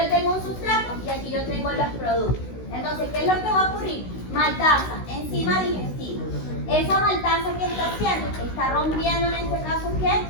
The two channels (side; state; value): right; late; 16 ms